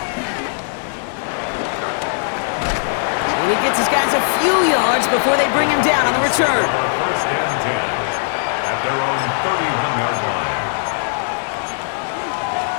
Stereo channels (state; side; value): silent; right; 66 dB below the other